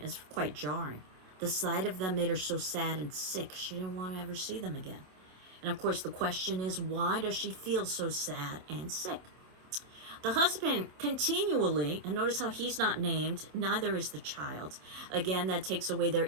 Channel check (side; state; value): left; late; 27 ms